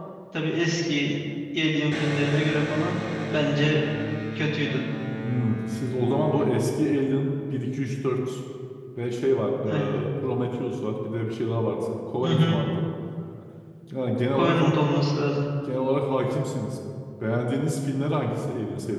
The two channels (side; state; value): both; identical; correlation 1.00